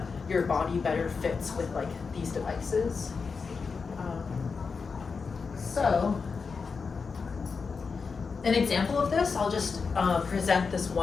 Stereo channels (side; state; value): right; quieter; 5.1 dB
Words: your body better fits with like these devices. So an example of this, I'll just present this